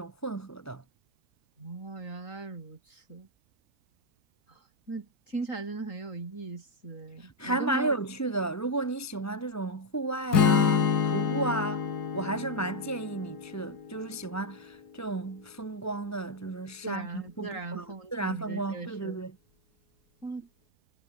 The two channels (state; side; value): normal; both; correlation 0.01